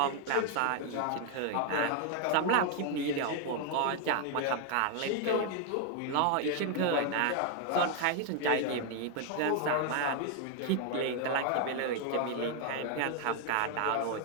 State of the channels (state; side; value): different; both; correlation 0.00